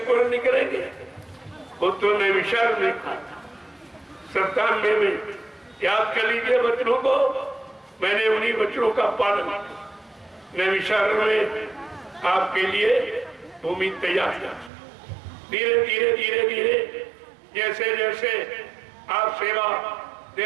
निकलेंगे, वो तो नैमिषारण्य में कहा था। 97 में याद कर लीजिए वचनों को, मैंने उन्हीं वचनों का पालन किया। नैमिषारण्य में आपके लिए भूमि तैयार किया। धीरे धीरे धीरे धीरे जैसे जैसे आप सेवा दे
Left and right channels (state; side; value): drops out; left; at 14.7 s